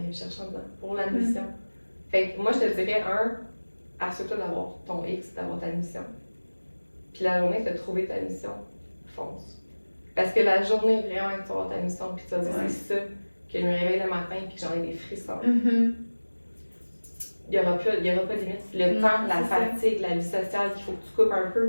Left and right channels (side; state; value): both; inverted; correlation -1.00